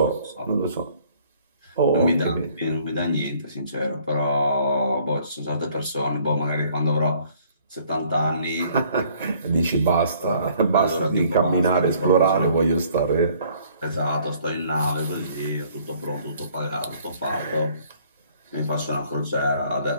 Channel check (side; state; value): both; inverted; correlation -0.60